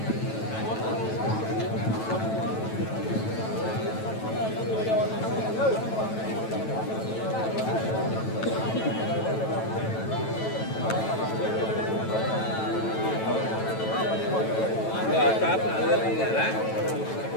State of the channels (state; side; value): late; right; 9.1 ms